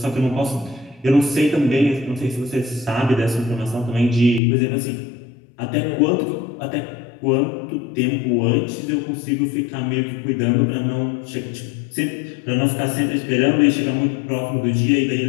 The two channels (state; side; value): drops out; right; at 4.4 s